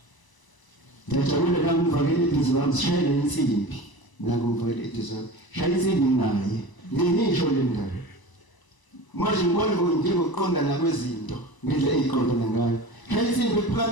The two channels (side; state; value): right; late; 1.0 ms